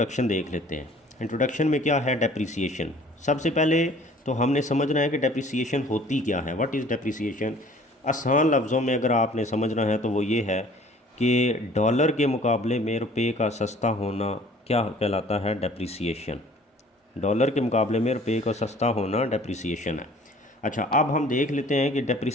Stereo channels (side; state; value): both; normal; correlation 0.52